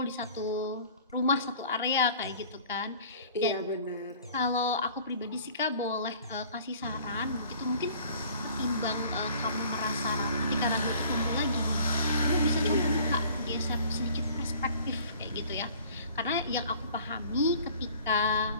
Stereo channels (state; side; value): inverted; both; correlation -0.50